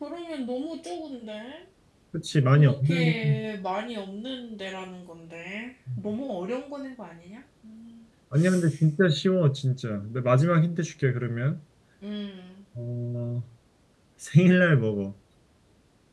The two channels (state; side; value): identical; both; correlation 1.00